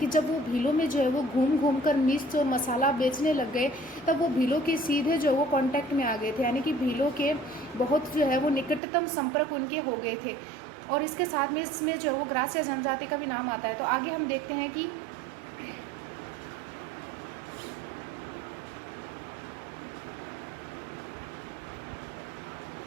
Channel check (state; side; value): drops out; left; at 8.8 s